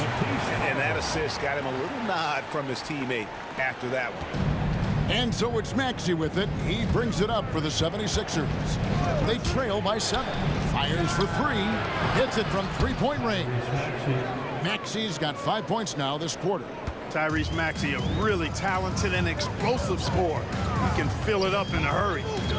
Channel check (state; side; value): identical; both; correlation 1.00